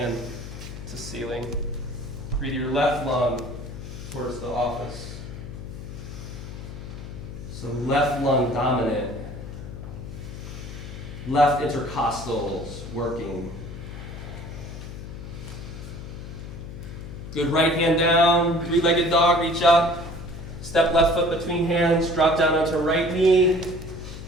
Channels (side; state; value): left; noise; hum, 10 dB below the sound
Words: to ceiling. Breathe your left lung towards the office. So left lung dominant. Left intercostals working. Good, right hand down, three-legged dog, reach up. Step left foot between hands, drop down onto right knee.